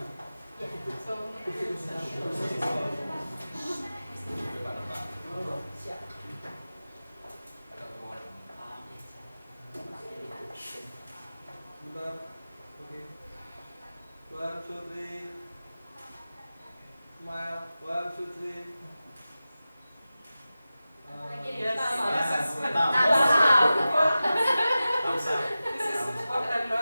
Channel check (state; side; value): inverted; both; correlation -0.95